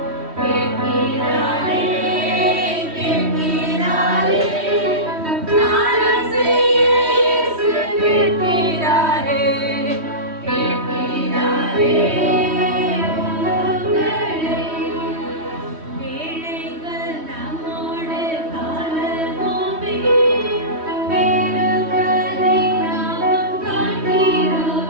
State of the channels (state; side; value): late; left; 3.1 ms